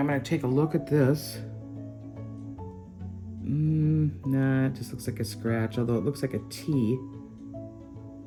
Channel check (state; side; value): identical; both; correlation 1.00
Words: gonna take a look at this. Nah, it just looks like a scratch, although it looks like a T.